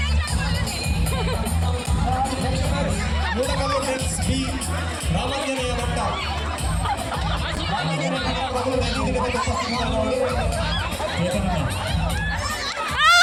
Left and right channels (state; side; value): identical; both; correlation 1.00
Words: friends B Ramanjaneya Bhatta